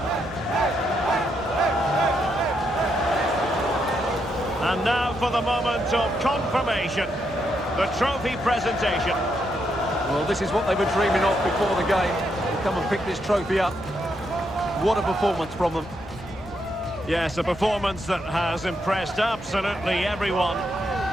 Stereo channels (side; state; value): both; normal; correlation 0.79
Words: And now for the moment of confirmation, the trophy presentation. Well, this is what they were dreaming of before the game. To come and pick this trophy up. What a performance from them. Yes, a performance that has impressed absolutely everyone.